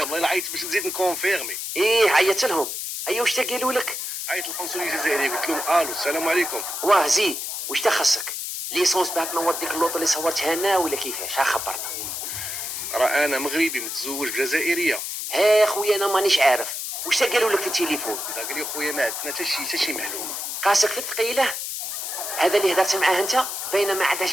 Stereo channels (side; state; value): left; noise; hiss, 5 dB below the sound